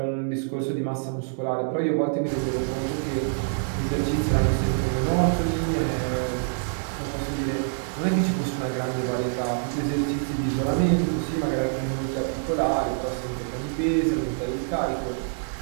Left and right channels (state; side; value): silent; left; 61 dB below the other